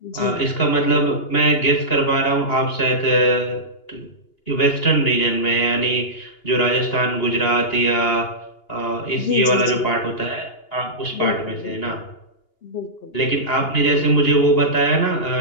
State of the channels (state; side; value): late; right; 2.8 ms